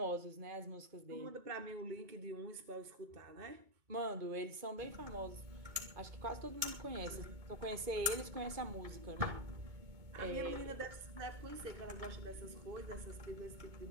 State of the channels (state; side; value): late; left; 2.2 ms